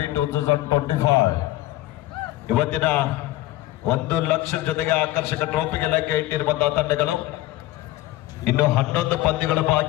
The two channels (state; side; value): quieter; right; 16.2 dB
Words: 2025 ಇವತ್ತಿನ 1 ಲಕ್ಷ ಜೊತೆಗೆ ಆಕರ್ಷಕ ಟ್ರೋಫಿಗೆ ಲೆಕ್ಕ ಇಟ್ಟಿರುವಂತಹ ತಂಡಗಳು. ಇನ್ನು 11 ಪಂದ್ಯಗಳು